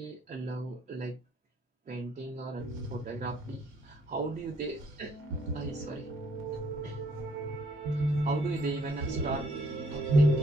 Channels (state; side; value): normal; both; correlation 0.66